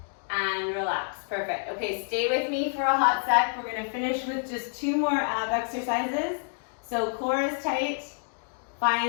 and relax. Perfect. Okay, stay with me for a hot sec. We're going to finish with just 2 more ab exercises. So core is tight.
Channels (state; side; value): silent; right; digital silence